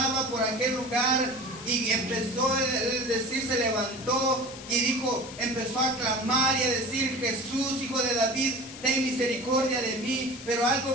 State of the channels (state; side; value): noise; left; hiss, 14 dB below the sound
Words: por aquel lugar y empezó a decir, se levantó y dijo, empezó a clamar y a decir: Jesús, hijo de David, ten misericordia de mí. Pero